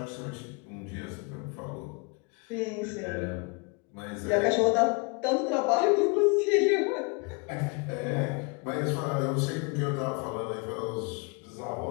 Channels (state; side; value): quieter; right; 31.1 dB